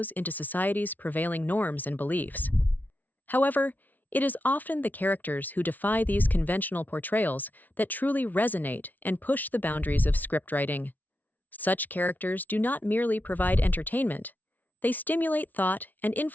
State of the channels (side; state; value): right; late; 0.080 ms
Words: into society's prevailing norms and beliefs. However, it is often the characters who defy these conventional portrayals that truly resonate and push the boundaries of scriptwriting. Such characters do not merely provide entertainment, they stimulate thought and